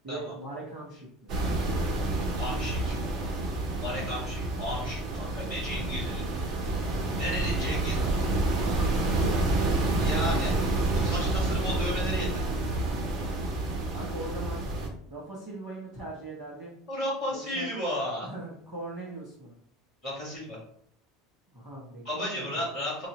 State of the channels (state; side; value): normal; both; correlation 0.45